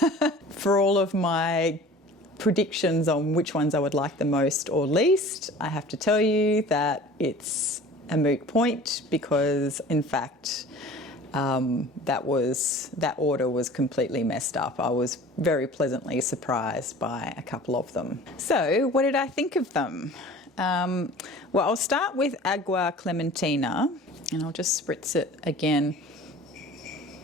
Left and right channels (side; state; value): both; normal; correlation 0.43